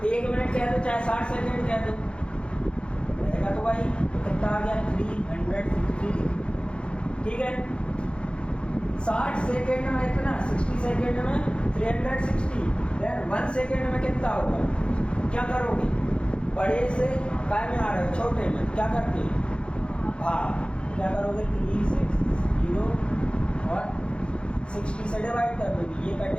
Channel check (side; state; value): right; late; 0.056 ms